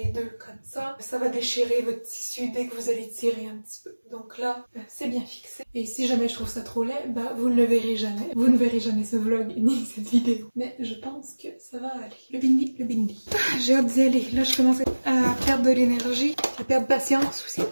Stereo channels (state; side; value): inverted; both; correlation -1.00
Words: deux comme ça va déchirer votre tissu dès que vous allez tirer un petit peu. Donc là, c'est bien fixé. Et si jamais je trouve ça trop laid, vous ne le verrez jamais. Vous ne verrez jamais ce vlog ni cette vidéo. Mais je pense que ça va aller. Le bindi, le bindi. J'ai hâte d'y aller. Là, je commence à perdre de l'énergie, à perdre patience aussi.